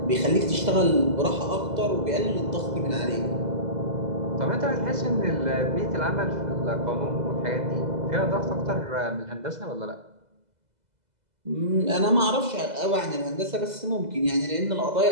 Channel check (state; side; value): late; left; 2.0 ms